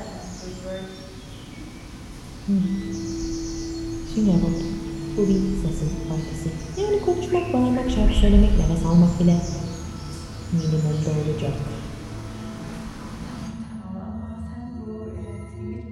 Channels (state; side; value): identical; both; correlation 1.00